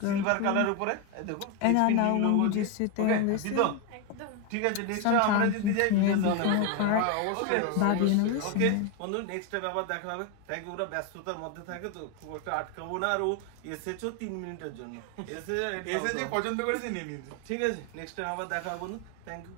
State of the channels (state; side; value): different; both; correlation 0.02